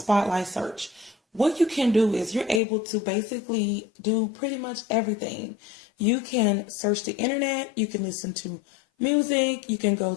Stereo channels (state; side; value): drops out; right; at 2.6 s